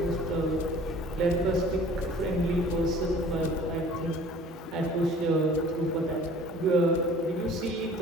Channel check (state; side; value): normal; both; correlation 0.49